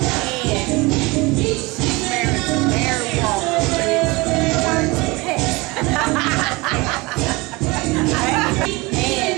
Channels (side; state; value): left; quieter; 23.8 dB